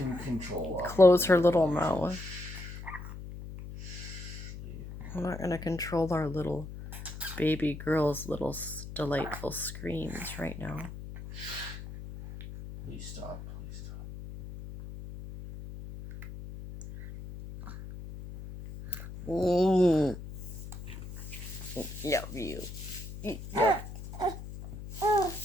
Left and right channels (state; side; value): noise; left; hum, 11 dB below the sound